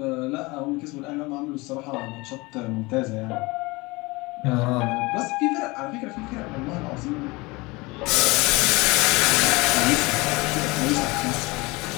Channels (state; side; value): quieter; right; 23.8 dB